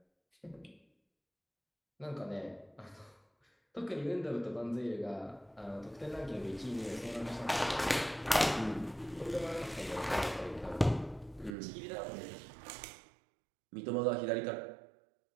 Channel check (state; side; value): drops out; left; at 11.5 s